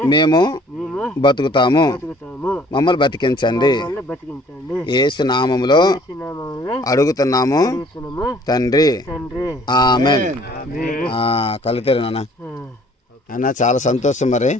మేము బతుకుతాము. మమ్మల్ని బతికించండి. యేసు నామములో అడుగుతున్నాము తండ్రి. ఆమేన్. కలుగుతారు నాన్న. అన్న చాలా సంతోషం. మరి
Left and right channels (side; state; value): both; normal; correlation 0.56